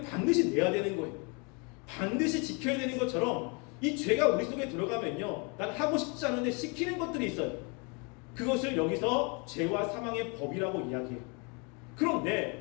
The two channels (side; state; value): right; quieter; 32.8 dB